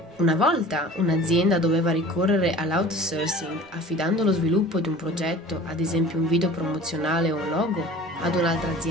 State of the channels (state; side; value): normal; both; correlation 0.43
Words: Una volta un'azienda doveva ricorrere all'outsourcing affidando lo sviluppo di un progetto, ad esempio un video promozionale o un logo, ad un'altra